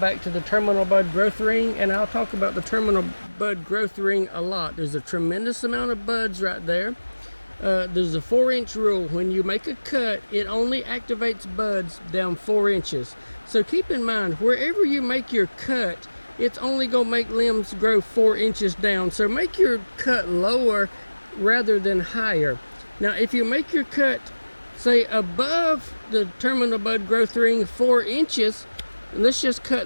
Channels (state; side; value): inverted; both; correlation -1.00